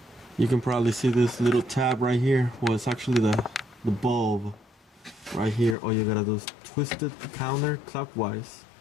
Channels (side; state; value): right; drops out; at 5.8 s